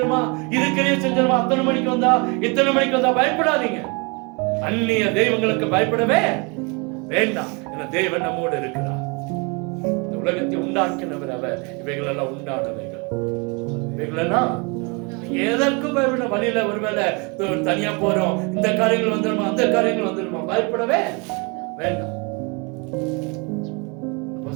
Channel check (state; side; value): quieter; left; 31.1 dB